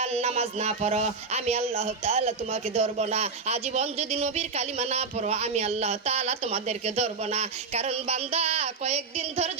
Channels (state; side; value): quieter; left; 4.7 dB